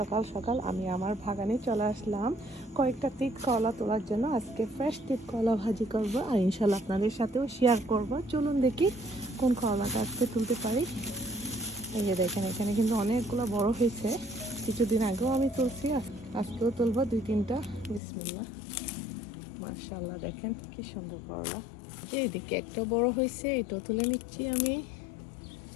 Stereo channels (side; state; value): right; drops out; at 18.0 s